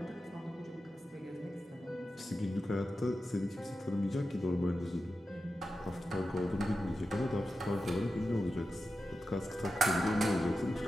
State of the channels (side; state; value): both; normal; correlation 0.91